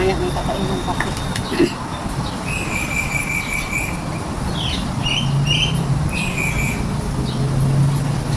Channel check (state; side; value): identical; both; correlation 1.00